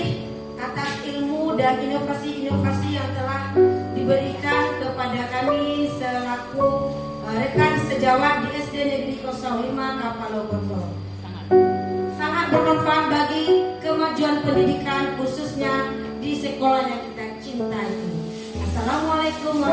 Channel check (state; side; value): identical; both; correlation 1.00